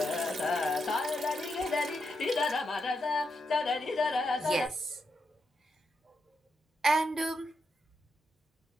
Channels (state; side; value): normal; both; correlation 0.84